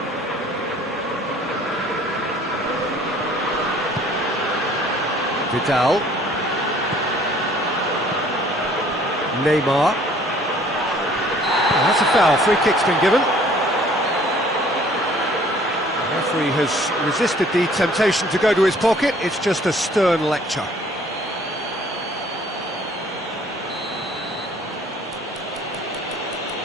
Vidal. Neymar. Oh, that's a foul. Free kick's been given. The referee has resisted the temptation to go to his pocket. It's just a stern lecture.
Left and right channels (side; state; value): both; normal; correlation 0.56